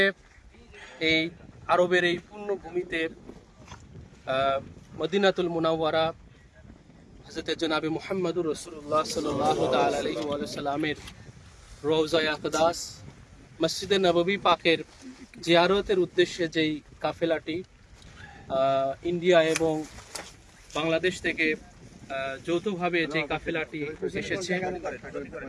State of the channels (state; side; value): identical; both; correlation 1.00